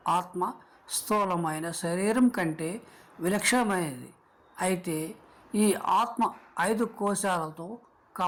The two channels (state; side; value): identical; both; correlation 1.00